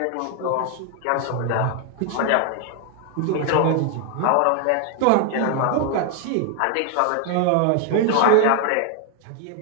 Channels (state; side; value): different; both; correlation 0.00